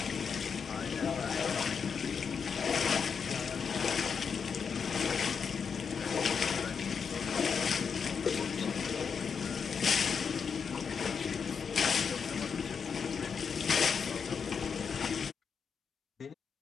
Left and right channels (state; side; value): quieter; right; 6.3 dB